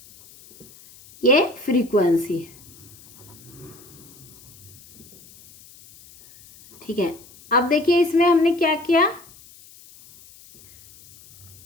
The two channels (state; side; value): noise; left; hiss, 23 dB below the sound